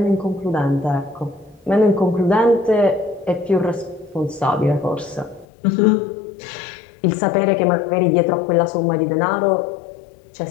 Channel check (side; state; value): right; drops out; at 5.5 s